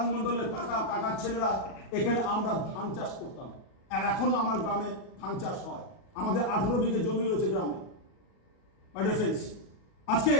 মণ্ডলের কাকার ছেলেরা এখানে আমরা ধান চাষ করতাম। আর এখনো আমার গ্রামে ধান চাষ হয়। আমাদের 18 বিঘে জমি রয়েছে গ্রামে। মাই ডিয়ার ফ্রেন্ডস, আজকে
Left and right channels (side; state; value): right; late; 37 ms